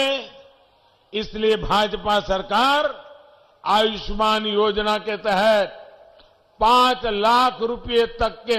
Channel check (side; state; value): both; identical; correlation 1.00